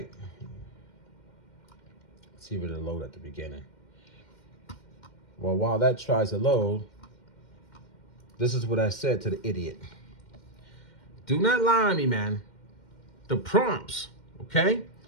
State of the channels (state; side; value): late; right; 2.1 ms